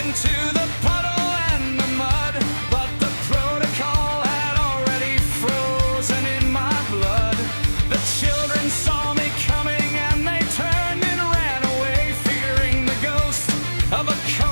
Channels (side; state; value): both; inverted; correlation -1.00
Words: the puddle and the mud, but the protocol had already frozen in my blood. The children saw me coming and they turned and ran away, fearing the ghost of a